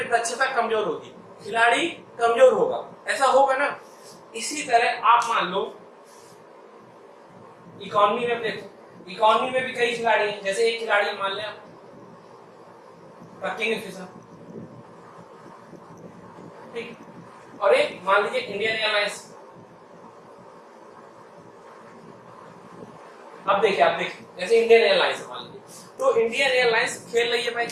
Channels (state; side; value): identical; both; correlation 1.00